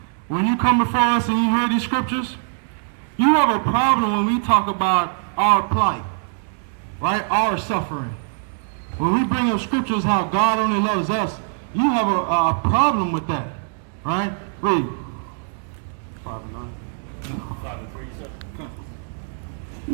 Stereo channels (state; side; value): silent; left; 64 dB below the other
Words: When you come before us and you hear these scriptures, you have a problem when we talk about our plight. Right? Our suffering. When we bring up scriptures how God only loves us, you have a problem with that. Right? Read. 5 and 9. 5 and 3, you said?